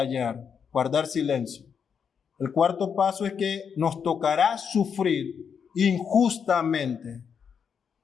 guardar silencio. El cuarto paso es que nos tocará sufrir injustamente.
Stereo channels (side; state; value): right; quieter; 6.9 dB